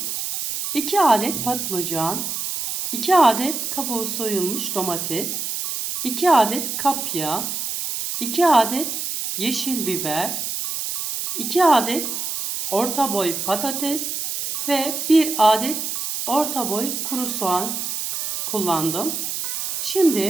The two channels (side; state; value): right; noise; hiss, 3 dB below the sound